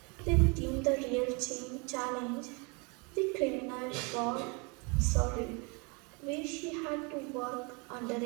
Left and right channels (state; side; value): quieter; left; 31.3 dB